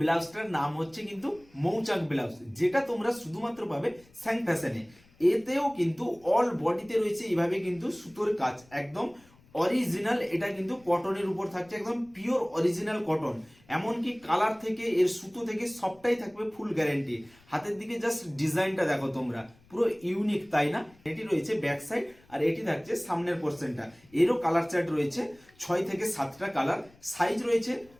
ব্লাউজটার নাম হচ্ছে কিন্তু মৌচাক ব্লাউজ, যেটা তোমরা শুধুমাত্র পাবে স্যাং ফ্যাশনে। এতেও কিন্তু অল বডিতে রয়েছে এইভাবে কিন্তু সুতোর কাজ, একদম অরিজিনাল। এটা কিন্তু কটনের উপর থাকছে, একদম পিওর অরিজিনাল কটন। এমনকি কালার থেকে এর সুতো থেকে সবটাই থাকবে ফুল গ্যারেন্টি। হাতের দিকে জাস্ট ডিজাইনটা দেখো তোমরা, পুরো ইউনিক, তাই না? এটি রয়েছে ব্যাক সাইড, আর এটি থাকছে সামনের পোর্শনটা। এরও কালার চার্ট রয়েছে 6 থেকে 7টা কালার। সাইজ রয়েছে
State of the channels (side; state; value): left; noise; rumble, 29 dB below the sound